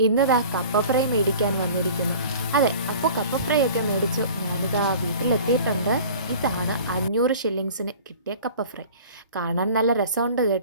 ഇന്നിതാ കപ്പ ഫ്രൈ മേടിക്കാൻ വന്നിരിക്കുന്നു. അതെ, അപ്പോൾ കപ്പ ഫ്രൈ ഒക്കെ മേടിച്ചു ഞാനിതാ വീട്ടിലെത്തിയിട്ടുണ്ട്. ഇതാണ് 500 ഷില്ലിങ്സിന് കിട്ടിയ കപ്പ ഫ്രൈ. കാണാൻ നല്ല രസമുണ്ട്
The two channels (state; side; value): inverted; both; correlation -0.43